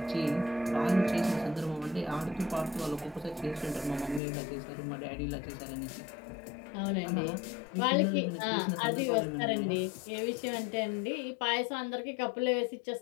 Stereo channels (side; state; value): right; drops out; at 4.2 s